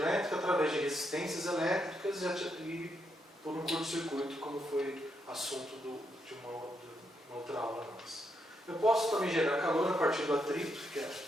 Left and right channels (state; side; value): normal; both; correlation 0.80